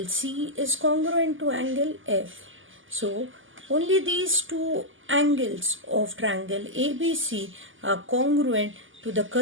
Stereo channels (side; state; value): left; late; 0.58 ms